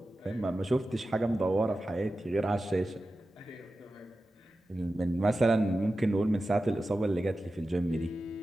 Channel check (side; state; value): both; normal; correlation 0.94